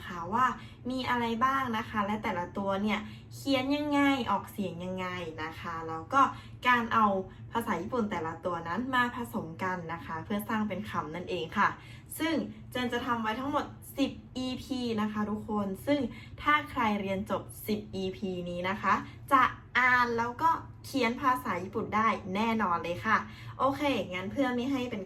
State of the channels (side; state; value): both; identical; correlation 1.00